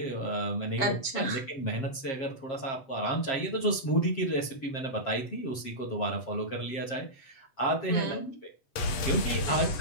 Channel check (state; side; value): late; right; 7.5 ms